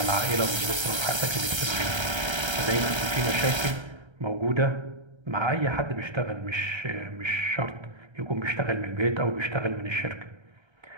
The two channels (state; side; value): late; left; 1.3 ms